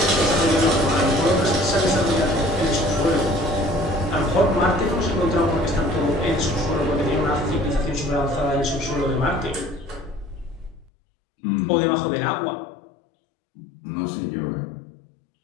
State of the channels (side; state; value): right; drops out; at 10.9 s